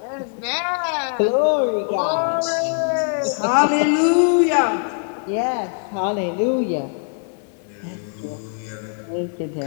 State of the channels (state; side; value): silent; right; 57 dB below the other